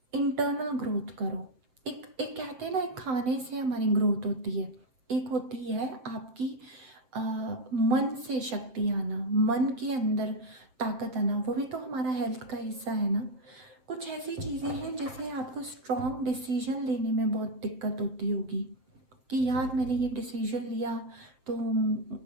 इंटरनल ग्रोथ करो। एक एक कहते हैं ना, एक खाने से हमारी ग्रोथ होती है, एक होती है आपकी मन से शक्ति आना, मन के अंदर ताकत आना, वो भी तो हमारा हेल्थ का हिस्सा है ना। कुछ ऐसी चीज़ें हैं जैसे आपको स्ट्रॉन्ग डिसीजन लेने में बहुत दिक्कत होती होगी कि यार मैंने ये डिसीजन लिया तो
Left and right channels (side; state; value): left; late; 7.6 ms